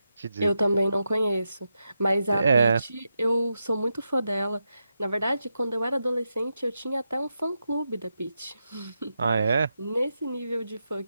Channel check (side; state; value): both; inverted; correlation -0.87